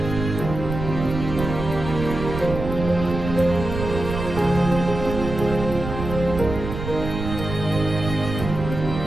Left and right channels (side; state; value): right; noise; rumble, 6 dB below the sound